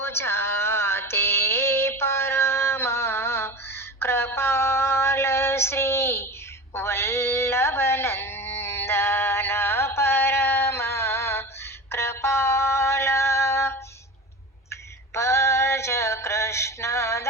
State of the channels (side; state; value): both; normal; correlation 0.30